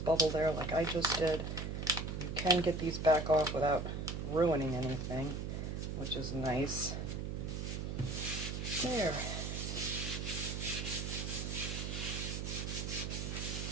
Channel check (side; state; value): right; noise; hum, 3 dB below the sound